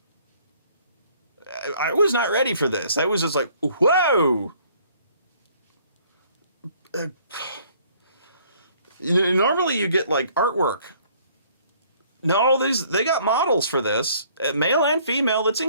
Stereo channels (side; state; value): both; inverted; correlation -0.60